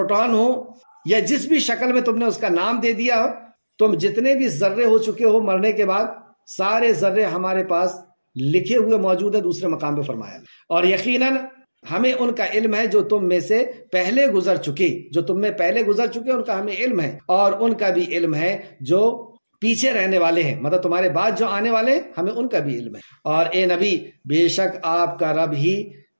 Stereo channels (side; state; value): both; inverted; correlation -1.00